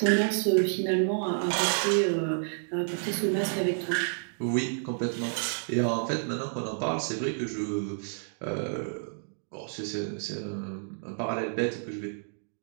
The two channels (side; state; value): left; silent; digital silence